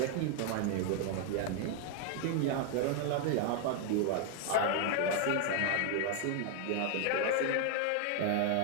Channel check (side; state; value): both; different; correlation 0.00